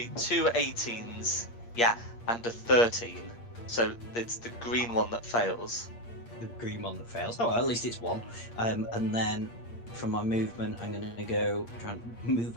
Yeah, and a 13. So it's the green one that fails. The green one that fails. Oh, well, at least it's 1. And then from my movement, I'm going to go try and move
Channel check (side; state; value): right; late; 8.6 ms